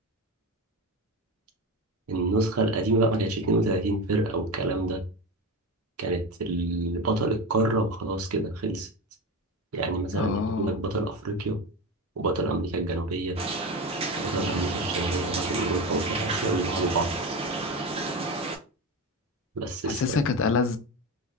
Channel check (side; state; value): both; normal; correlation 0.22